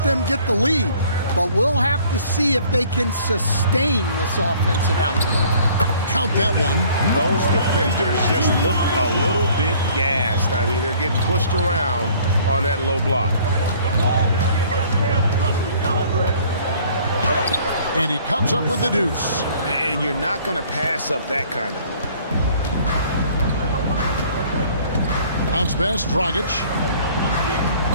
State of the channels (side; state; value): both; inverted; correlation -0.55